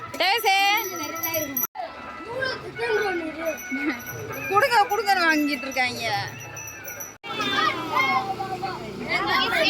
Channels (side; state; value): both; identical; correlation 1.00